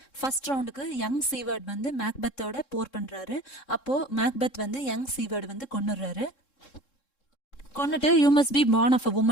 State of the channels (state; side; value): late; right; 3.7 ms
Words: ஃபர்ஸ்ட் ரவுண்டுக்கு யங் சீவர்ட் வந்து மேக்பெத்தோட போர் பண்றாரு. அப்போ மேக்பெத் வந்து யங் சீவர்ட் வந்து கொன்னுடுறாரு. கொன்னுட்டு you must be born of a